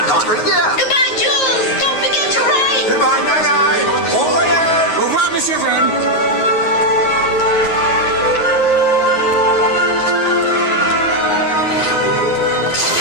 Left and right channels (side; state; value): right; late; 9.4 ms